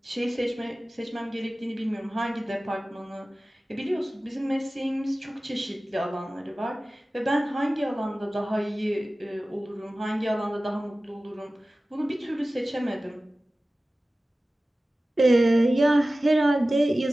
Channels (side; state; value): both; normal; correlation 0.96